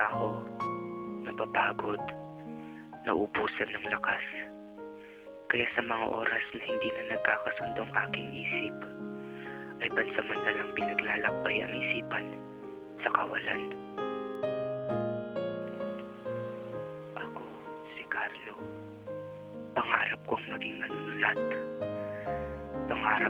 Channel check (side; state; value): both; identical; correlation 1.00